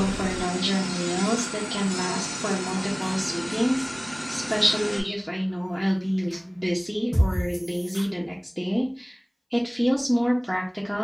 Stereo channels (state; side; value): identical; both; correlation 1.00